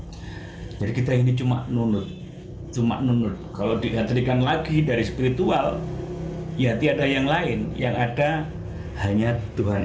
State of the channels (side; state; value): both; identical; correlation 1.00